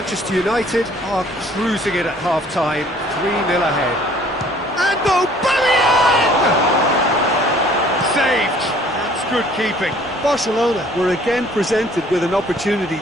United are cruising it at half-time, 3-0 ahead. And Aubameyang! Saved. That's good keeping. Barcelona were again presented with an opportunity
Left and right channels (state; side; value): normal; both; correlation 0.56